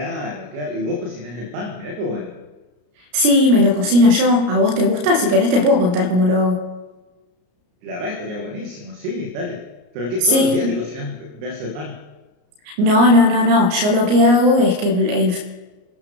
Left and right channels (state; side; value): late; left; 33 ms